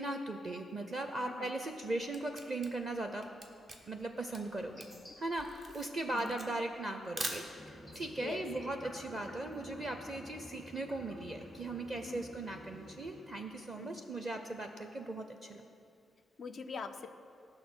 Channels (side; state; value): both; normal; correlation 0.80